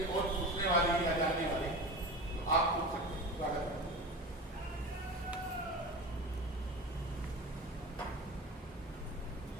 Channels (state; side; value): normal; both; correlation 0.30